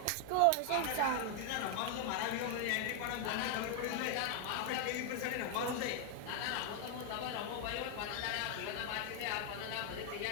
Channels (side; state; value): both; different; correlation 0.00